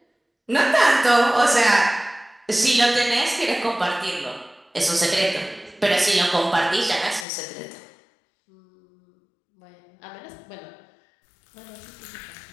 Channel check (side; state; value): right; drops out; at 7.2 s